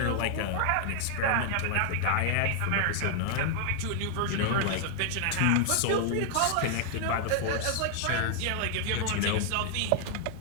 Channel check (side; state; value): both; different; correlation 0.00